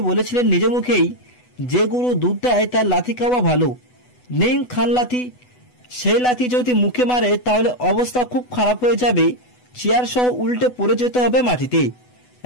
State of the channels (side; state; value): right; late; 8.1 ms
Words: বলেছিলেন নিজ মুখেই, যে গরু দুধ দেয় তার লাথি খাওয়া ভালো, নেই খান লাথি। সেই লাথি যদি মুখে মারে তাহলে অবস্থা খুব খারাপ হয়ে যাবে, চেয়ার সহ উল্টে পড়ে যেতে হবে মাটিতে।